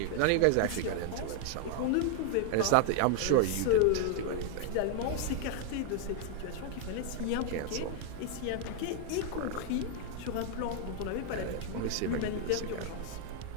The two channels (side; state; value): both; different; correlation 0.00